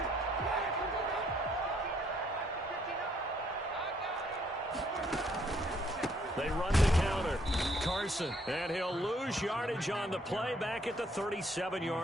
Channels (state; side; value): normal; both; correlation 0.67